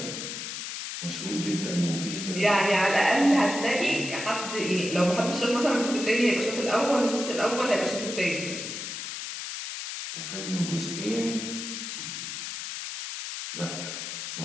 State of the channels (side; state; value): left; noise; hiss, 6 dB below the sound